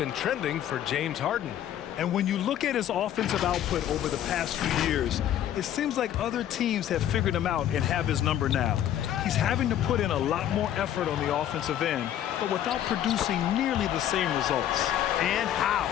trending for James Harden. And when you look at his offensive output over the past few years, it seems like other teams have figured him out and have his number now. He's having to put in a lot more effort on the offensive end, but without producing nearly the same results. And how?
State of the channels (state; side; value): quieter; right; 11.2 dB